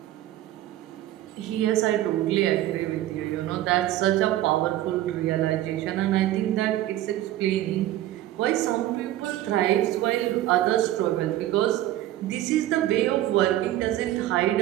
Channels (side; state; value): left; quieter; 14.1 dB